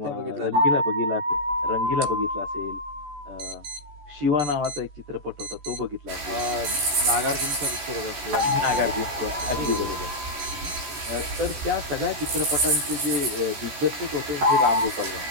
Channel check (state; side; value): late; left; 14 ms